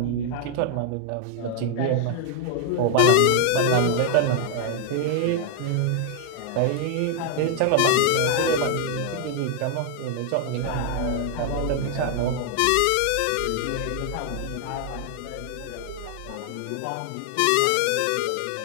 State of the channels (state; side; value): different; both; correlation 0.00